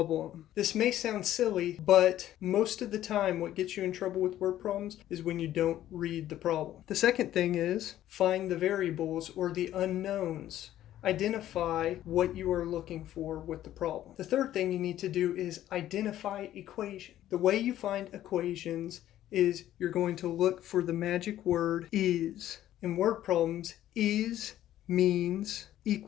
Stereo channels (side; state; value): right; quieter; 12.8 dB